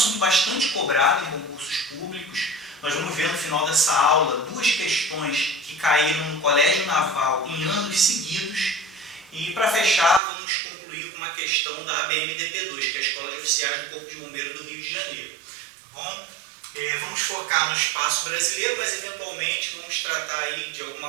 bastante cobrado em concursos públicos. Nós vamos ver no final dessa aula duas questões que caíram no Colégio Naval em anos seguidos. E para fechar, vamos concluir com uma questão da ABMDP2, que é a Escola de Oficiais do Corpo de Bombeiros do Rio de Janeiro. Tá bom? Vamos focar no espaço brasileiro, mas eventualmente vamos tratar aí de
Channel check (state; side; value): drops out; left; at 10.2 s